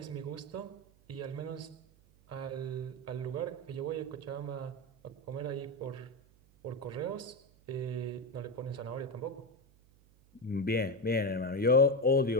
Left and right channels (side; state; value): right; noise; hum, 28 dB below the sound